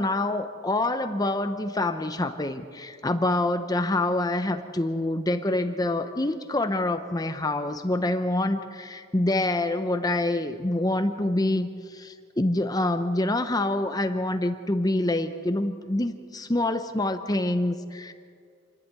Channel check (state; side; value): normal; both; correlation 0.67